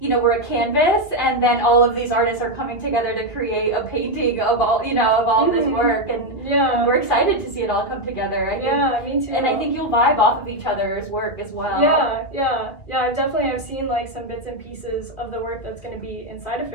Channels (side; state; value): right; late; 2.2 ms